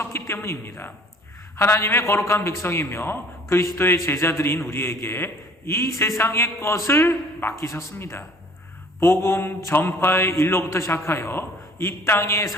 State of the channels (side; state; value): both; normal; correlation 0.52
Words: 때문입니다. 하나님의 거룩한 백성이며 그리스도의 제자들인 우리에게 이 세상의 것을 맡기셨습니다. 복음 전파의 일로부터 시작하여 이 땅에